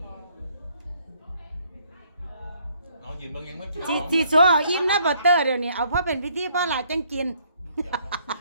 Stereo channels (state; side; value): inverted; both; correlation -0.66